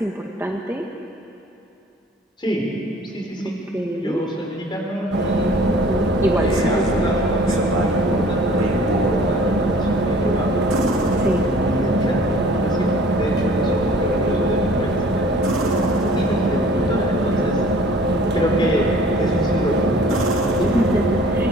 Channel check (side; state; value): both; normal; correlation 0.51